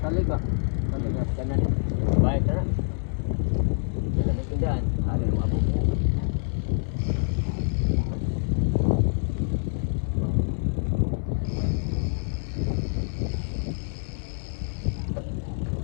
Kali ba? Kanan. Baik na. Tindahan.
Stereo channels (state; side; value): silent; right; digital silence